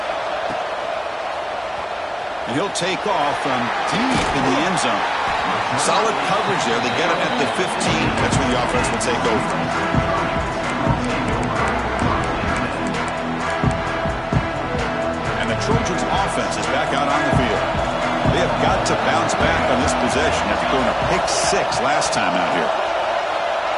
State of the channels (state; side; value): identical; both; correlation 1.00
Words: And he'll take off from deep in the end zone. Solid coverage there. They get him at the 15. That's where the offense will take over. Trojans offense is back out on the field. They have got to bounce back on this possession after going a pick 6 last time out here.